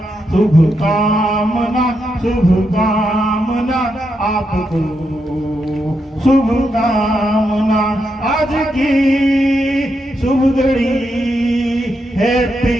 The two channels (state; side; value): normal; both; correlation 0.83